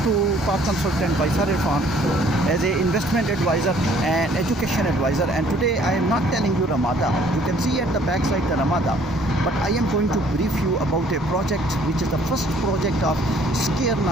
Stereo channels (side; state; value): both; normal; correlation 0.59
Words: to Park Consultant by Sir Irfan as an investment advisor and education advisor. And today I am not telling you Ramada. You can see at the back side the Ramada. But I am going to brief you about a project which is the first project of Scare